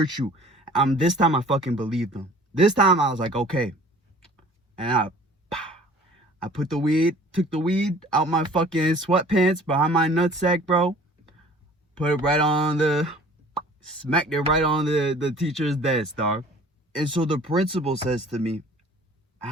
you. This time I fucking believed them. This time I was like, okay. And I took the weed out my fucking sweatpants behind my nutsack, bro. Put it right on smacked it right on the teacher's desk, dog. And so the principal says to me,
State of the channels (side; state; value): both; normal; correlation 0.49